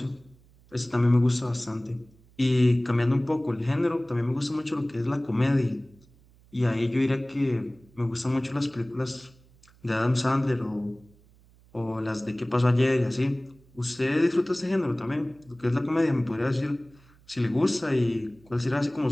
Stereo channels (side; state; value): right; noise; hum, 28 dB below the sound